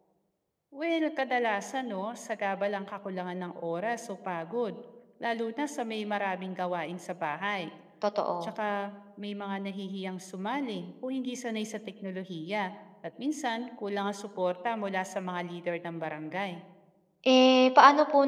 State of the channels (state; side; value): identical; both; correlation 1.00